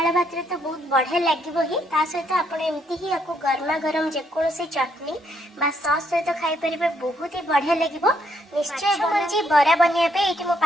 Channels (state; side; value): normal; both; correlation 0.72